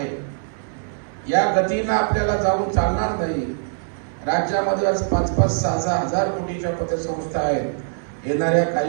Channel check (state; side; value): silent; left; 59 dB below the other